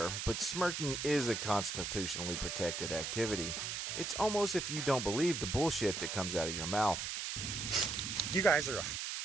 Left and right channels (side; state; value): right; noise; hiss, 4 dB below the sound